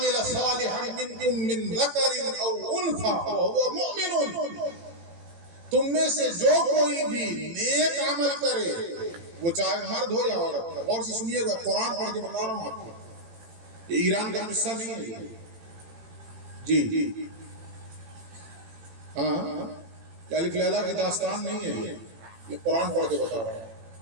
صالحا منکم من ذکر او انثى وهو مؤمن. تم میں سے جو کوئی بھی نیک عمل کرے، وہ چاہے مرد ہو یا عورت. غور سے سنیے گا، قرآن پڑھ کے بتا رہا ہوں آپ کو، یہ ایران کا قصہ نہیں ہے جی. ہاں الف لیلا کی داستان نہیں ہے، یہ قرآن پڑھ کے بتا رہا ہوں.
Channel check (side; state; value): left; late; 18 ms